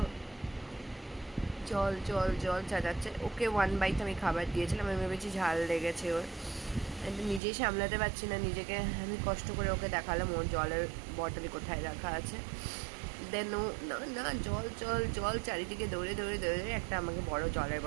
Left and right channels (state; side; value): drops out; left; at 7.4 s